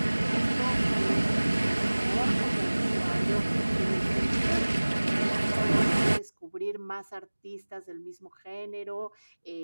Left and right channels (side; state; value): both; inverted; correlation -1.00